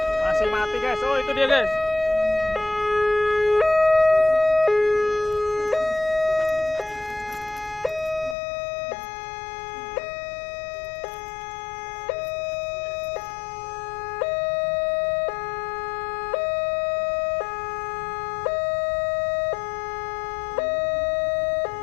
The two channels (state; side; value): drops out; right; at 8.3 s